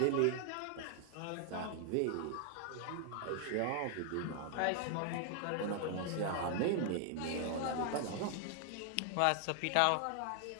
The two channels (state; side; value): different; both; correlation 0.00